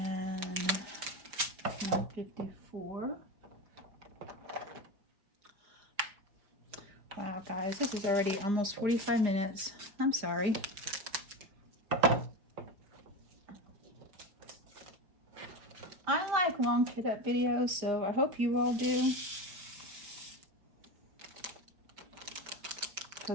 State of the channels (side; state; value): left; late; 5.1 ms